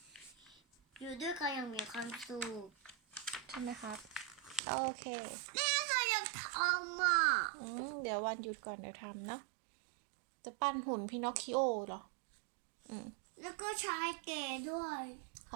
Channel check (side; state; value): left; drops out; at 4.6 s